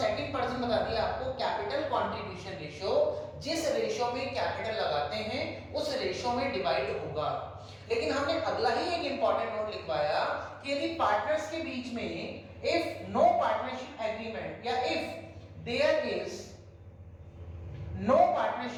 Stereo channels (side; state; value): both; identical; correlation 1.00